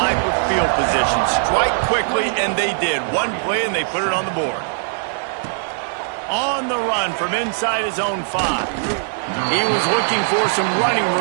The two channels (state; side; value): silent; left; digital silence